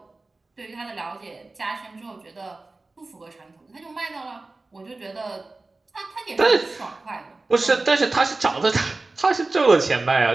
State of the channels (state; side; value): quieter; left; 3.3 dB